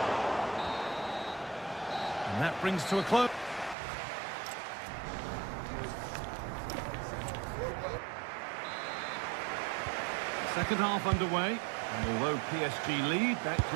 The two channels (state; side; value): drops out; left; at 3.8 s